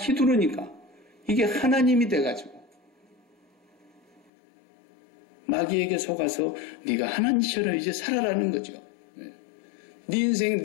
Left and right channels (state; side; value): drops out; right; at 4.3 s